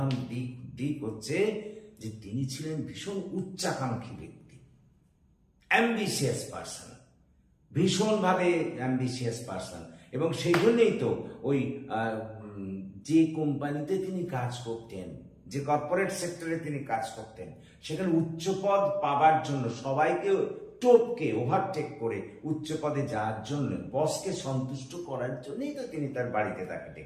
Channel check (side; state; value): both; identical; correlation 1.00